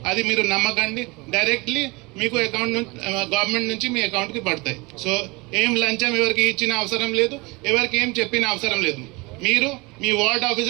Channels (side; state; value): left; quieter; 25.2 dB